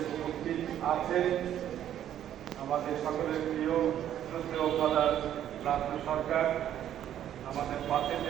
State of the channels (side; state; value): left; quieter; 10.9 dB